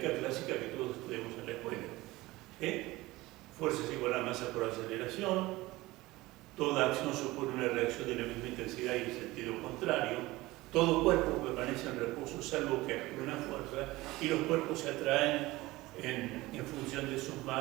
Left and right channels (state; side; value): quieter; left; 19.5 dB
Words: clásica que todos estudiamos en la escuela. Fuerza es igual a masa por aceleración, toda acción supone una reacción de la misma intensidad y en sentido contrario, todo cuerpo permanece en reposo salvo que actúe una fuerza, y los cuerpos se atraen en función de sus